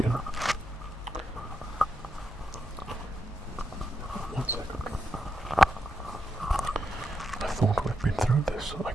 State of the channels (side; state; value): both; normal; correlation 0.85